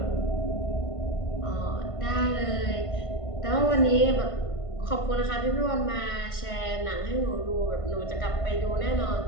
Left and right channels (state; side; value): late; right; 1.5 ms